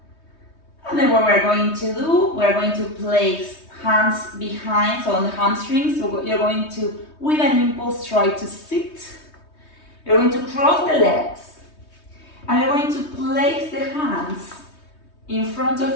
And then what we're going to do, we're going to place hands behind, so on the hamstrings. So you're going to, with an impulse, try to sit. You're going to cross the legs, and you're going to place the hands in front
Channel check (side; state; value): right; late; 3.2 ms